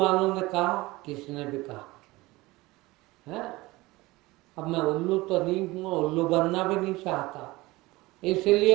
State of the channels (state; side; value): quieter; left; 20.7 dB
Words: ने कहा, किसने भी कहा है। अब मैं उल्लू तो नहीं हूँ, उल्लू बनना भी नहीं चाहता,